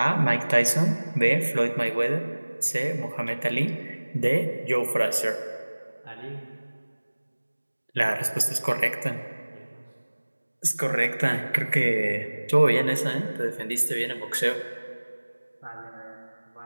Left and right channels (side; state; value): both; inverted; correlation -1.00